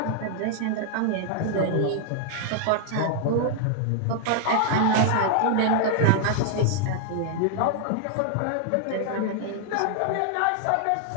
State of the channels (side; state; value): both; different; correlation 0.00